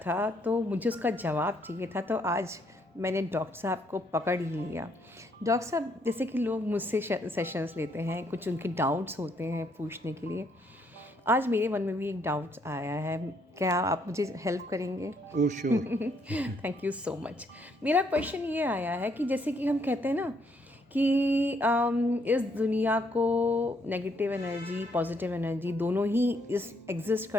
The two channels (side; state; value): both; normal; correlation 0.71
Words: तो मुझे उसका जवाब चाहिए था, तो आज मैंने डॉक्टर साहब को पकड़ ही लिया। डॉक्टर साहब, जैसे कि लोग मुझसे सेशंस लेते हैं, कुछ उनके डाउट्स होते हैं पूछने के लिए। आज मेरे मन में भी एक डाउट्स आया है, क्या आप मुझे हेल्प करेंगे? Oh sure. Thank you so much. मेरा क्वेश्चन ये आया है कि जैसे कि हम कहते हैं ना कि इस दुनिया को नेगेटिव एनर्जी पॉजिटिव एनर्जी दोनों ही इस एग्जिस्ट